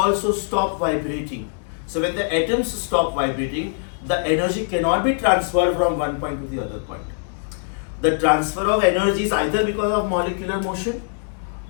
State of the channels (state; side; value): silent; right; digital silence